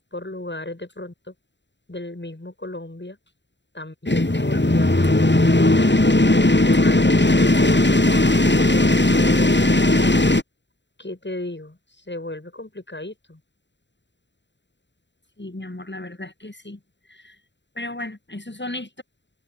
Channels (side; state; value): right; late; 0.52 ms